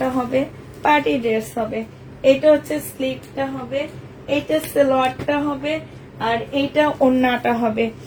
হবে, পার্টি ড্রেস হবে। এটা হচ্ছে স্লিভটা হবে, এটা সালোয়ারটা হবে, আর এইটা ওড়নাটা হবে।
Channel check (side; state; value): both; identical; correlation 1.00